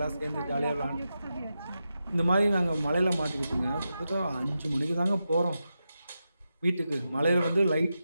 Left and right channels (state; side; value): inverted; both; correlation -0.89